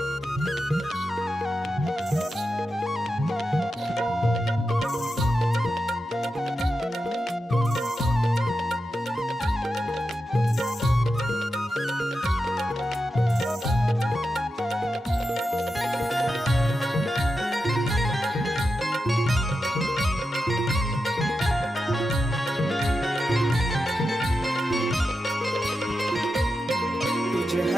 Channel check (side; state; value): both; normal; correlation 0.89